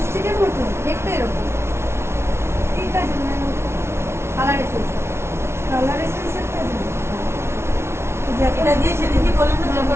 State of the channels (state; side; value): late; left; 0.13 ms